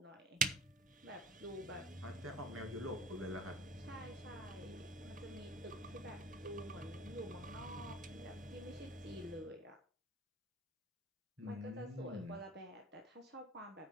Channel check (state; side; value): normal; both; correlation 0.43